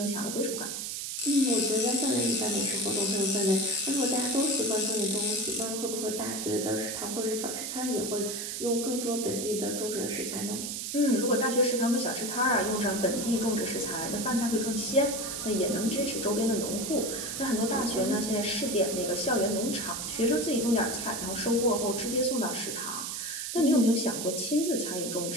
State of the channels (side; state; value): right; noise; hiss, 4 dB below the sound